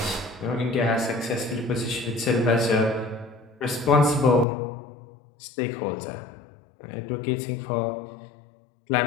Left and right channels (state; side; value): drops out; right; at 4.5 s